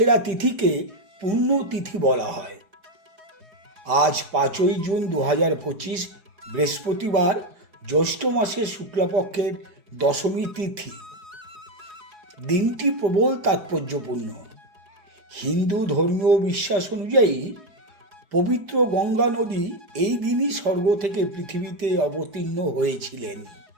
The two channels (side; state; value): left; late; 5.0 ms